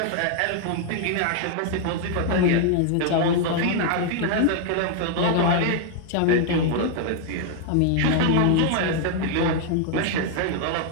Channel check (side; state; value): both; different; correlation 0.00